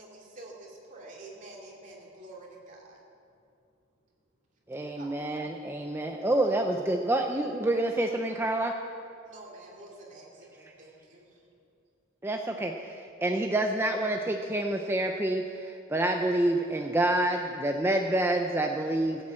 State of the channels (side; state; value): both; normal; correlation 0.64